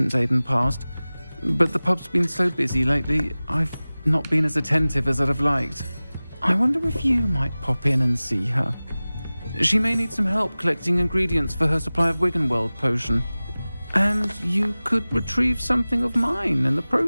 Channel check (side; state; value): both; inverted; correlation -0.98